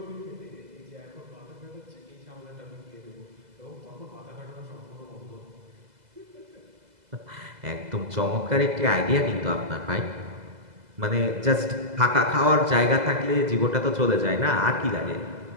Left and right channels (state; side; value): late; left; 2.0 ms